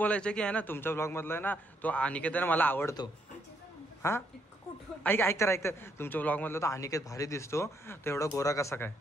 की आहे ना तुमच्या ब्लॉग मधला आहे ना तो अनिकेत आहे ना मला आवडतो हा ऐक तर तुमच्या ब्लॉग मधला तो अनिकेत भारी दिसतो तो एवढा गोरा कसा काय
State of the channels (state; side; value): normal; both; correlation 0.73